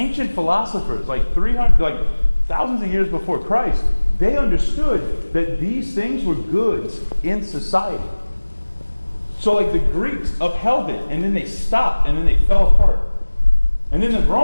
philosophers, like 300, like thousands of years before Christ, they understood that these things were goods in society. So, like, the Greeks upheld it, and then they stopped, and then they fell apart. And then the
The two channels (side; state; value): both; inverted; correlation -1.00